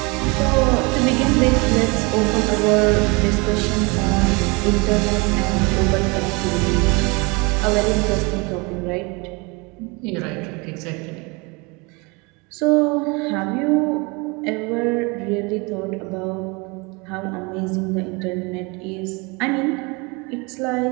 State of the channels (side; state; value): left; quieter; 28.2 dB